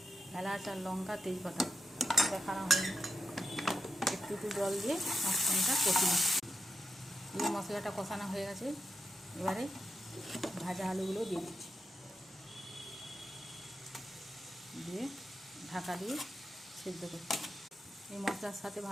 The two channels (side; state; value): both; normal; correlation 0.87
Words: এলাচ আর লঙ্কা তেজপাতা দেখানো হয়নি, একটু জল দিয়ে মশলাটা কষে নিচ্ছি। এই মশলাটা কষানো হয়ে গেছে, এবারে ভাজা আলুগুলো দিয়ে দিচ্ছি, দিয়ে ঢাকা দিয়ে সেদ্ধ করছি। এই মশলার সাথে